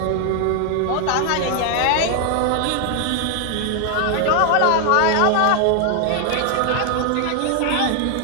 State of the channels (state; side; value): different; both; correlation 0.00